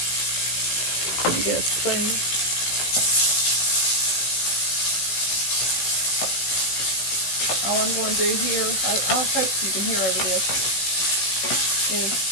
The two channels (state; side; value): late; right; 16 ms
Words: Get a spoon. All I'm going to do here, I hope you can hear over this, is